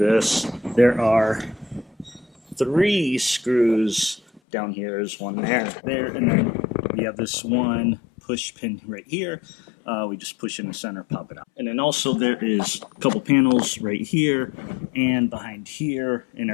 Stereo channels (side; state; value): right; drops out; at 4.4 s